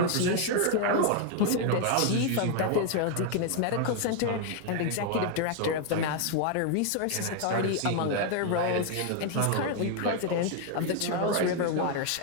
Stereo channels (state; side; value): different; both; correlation 0.00